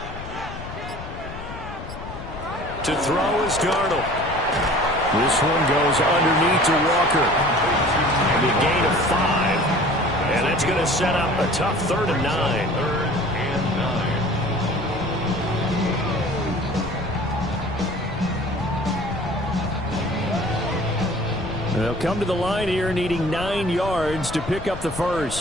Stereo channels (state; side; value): noise; left; rumble, 11 dB below the sound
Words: To throw is Darnold. This one goes underneath to Walker. And a gain of 5. And that's going to set up a tough 3rd and 9. They'll come to the line here needing 9 yards to pick up the